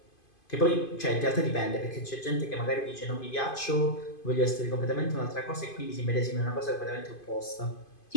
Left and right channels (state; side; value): late; right; 2.5 ms